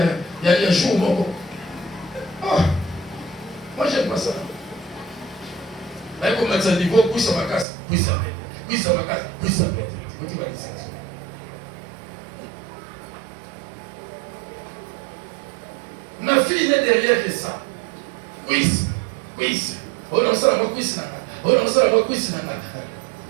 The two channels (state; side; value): drops out; left; at 7.7 s